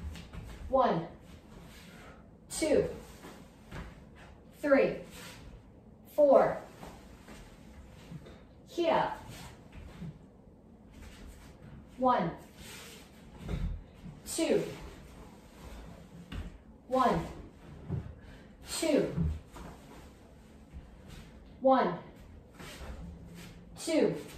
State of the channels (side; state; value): both; identical; correlation 1.00